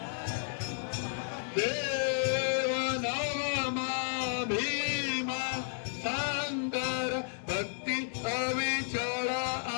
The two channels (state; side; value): silent; right; digital silence